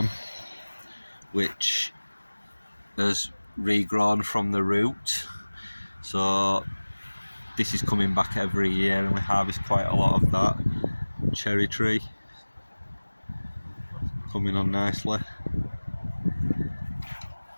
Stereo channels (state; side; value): inverted; both; correlation -1.00